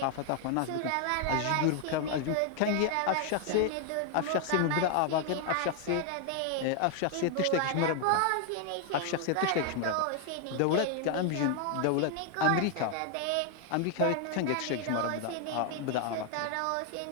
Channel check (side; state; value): both; different; correlation 0.00